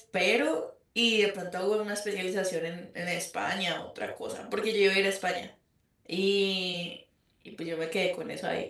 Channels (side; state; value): both; identical; correlation 1.00